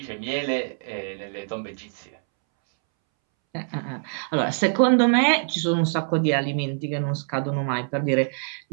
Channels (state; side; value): silent; left; 62 dB below the other